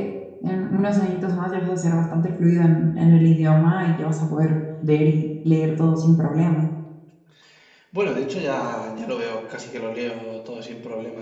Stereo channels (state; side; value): identical; both; correlation 1.00